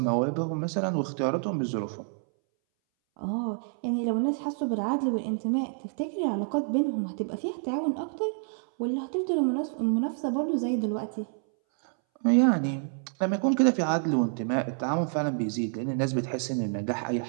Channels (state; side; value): silent; left; 59 dB below the other